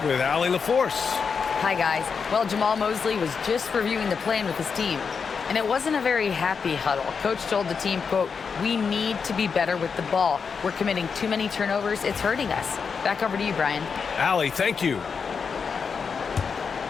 with Allie LaForce. Hi, guys. Well, Jamal Mosley was just reviewing the plan with his team, and it wasn't a very happy huddle. Coach told the team, quote, "We need to be better with the ball. We're committing too many turnovers. It's hurting us." Back over to you, Brian. Allie, thank you.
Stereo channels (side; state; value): right; quieter; 5.8 dB